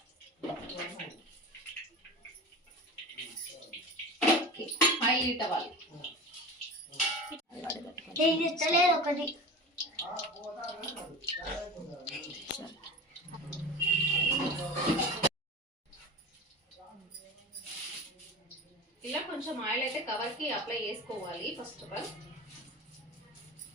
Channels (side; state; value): both; normal; correlation 0.32